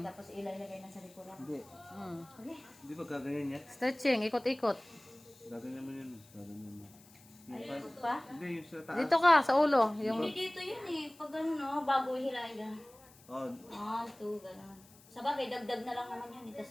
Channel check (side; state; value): left; noise; hiss, 25 dB below the sound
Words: Tapos ilagay na sa likuran. Hindi. Okay. Di ba gaganyan yan? Stretching. Ikot-ikot. Gaganyan mo yun. Gaganyan mo. Ay, ikot pa. Hindi, yung sa taas. Dito ka, sa ulo. Yung, Hindi dito yun eh. Pag ano no, bago hilahin ka. Oh, 1, 2, gano'n. Sa bagay, dagdag na lang naman yan.